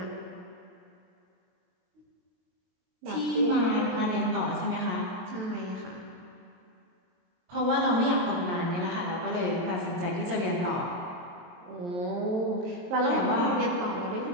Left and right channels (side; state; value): left; late; 22 ms